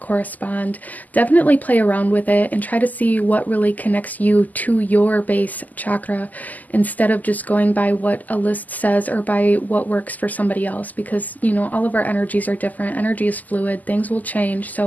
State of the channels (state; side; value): late; right; 0.081 ms